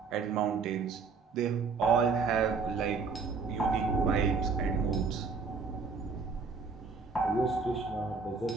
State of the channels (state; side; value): quieter; left; 4.9 dB